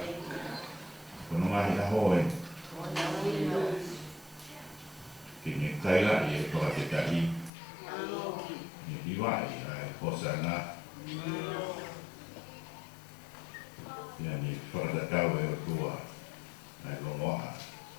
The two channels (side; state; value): right; drops out; at 7.5 s